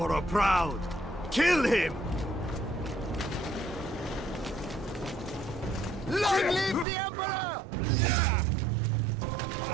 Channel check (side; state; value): left; drops out; at 6.9 s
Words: proud! Kill him! Long live the Emperor!